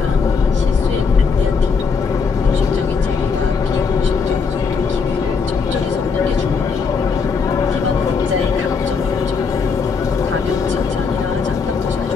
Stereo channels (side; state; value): right; quieter; 5.3 dB